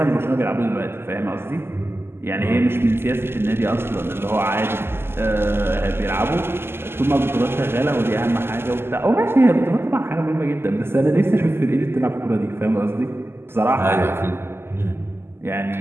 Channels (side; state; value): left; late; 0.12 ms